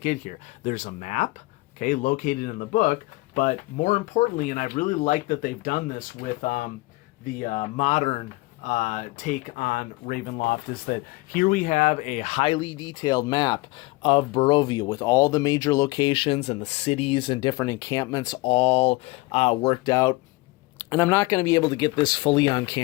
here? There's a map, okay, located in the book, but more importantly, and I really like that they've done this with the modern take on Ravenloft, is that here we have a highly detailed map of Barovia with all the major locations and the cities and different encampments all worked out. And I'm not going to be able to get this fully on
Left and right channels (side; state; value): right; quieter; 22.2 dB